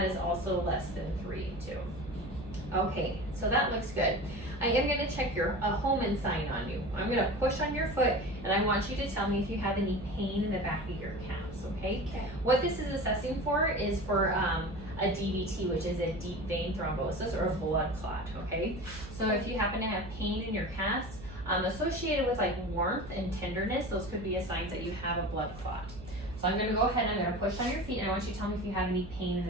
is also less than 3 too. Okay, so that looks good. I am going to check your Hohmann sign on you. I'm going to push on your foot, and I want you to tell me if you have any pain in the back of your calves, okay? Okay. What this is assessing for is for a DVT, which is a deep vein thrombosis or a blood clot, okay? So if you happen to have pain in your calves, associated with like warmth and tenderness, those could be a signs that you have a blood clot. So I'm going to go ahead and I'm going to push on your feet, and I want you to tell me if you have any pain in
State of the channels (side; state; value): right; noise; hum, 14 dB below the sound